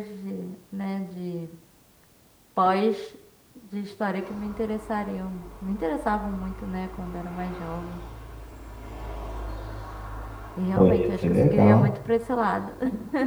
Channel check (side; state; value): both; identical; correlation 1.00